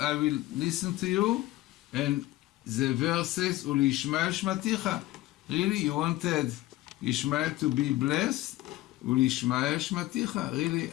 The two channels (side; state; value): right; quieter; 17.2 dB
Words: will listen to you, and the verse says, Uli Ishmael Shmaticha. Really, you wanted Ishmael to be blessed? Uli Ishmael Shmaticha. Really,